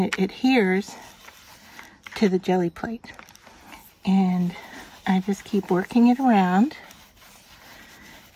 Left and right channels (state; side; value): identical; both; correlation 1.00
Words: adheres to the jelly plate. And I just keep working it around